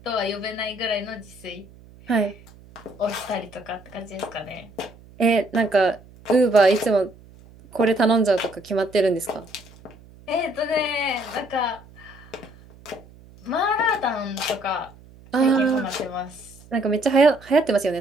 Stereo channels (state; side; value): noise; right; hum, 23 dB below the sound